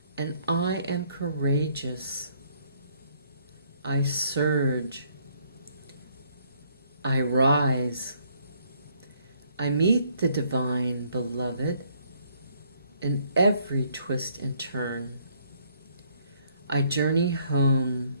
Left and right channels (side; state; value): both; inverted; correlation -0.67